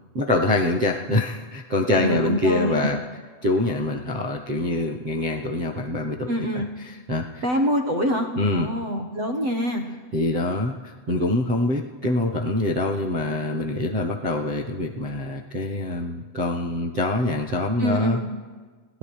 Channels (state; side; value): late; left; 8.0 ms